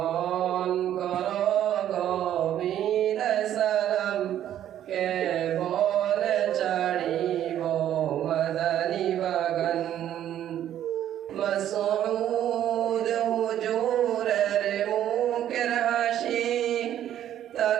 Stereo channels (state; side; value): quieter; left; 11.2 dB